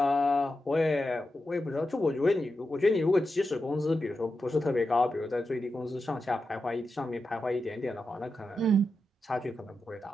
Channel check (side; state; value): both; normal; correlation 0.89